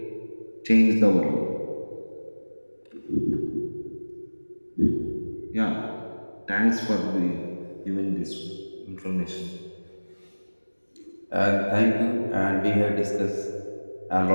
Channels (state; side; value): inverted; both; correlation -1.00